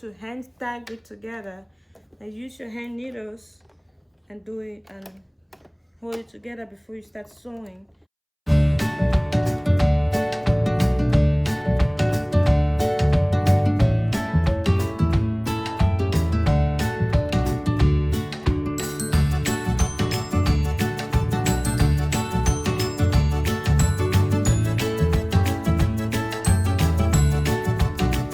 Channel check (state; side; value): identical; both; correlation 1.00